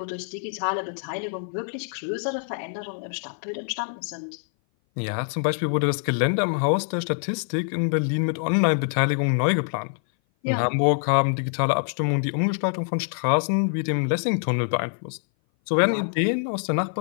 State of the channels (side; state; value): right; silent; 57 dB below the other